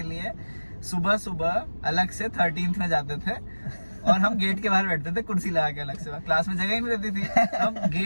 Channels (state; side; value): inverted; both; correlation -1.00